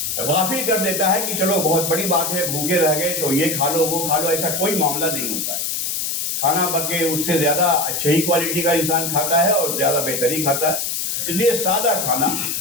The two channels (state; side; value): noise; left; hiss, 1 dB below the sound